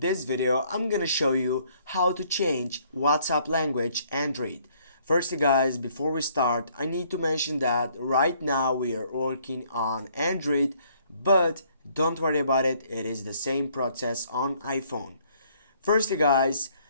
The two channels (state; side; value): inverted; both; correlation -0.64